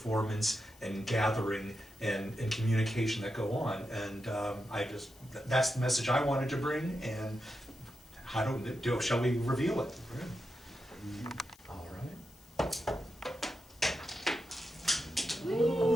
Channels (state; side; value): noise; left; hiss, 26 dB below the sound